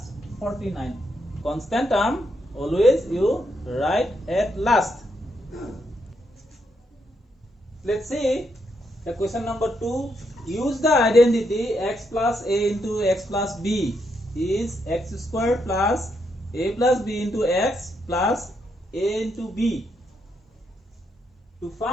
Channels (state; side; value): normal; both; correlation 0.78